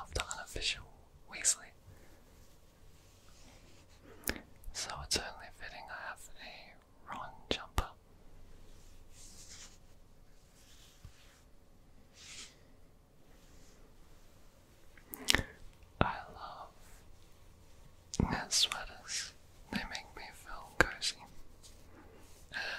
the unofficial Weasley. So it's only fitting I have a Ron jumper. I love knit sweaters. They make me feel cozy.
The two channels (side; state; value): both; identical; correlation 1.00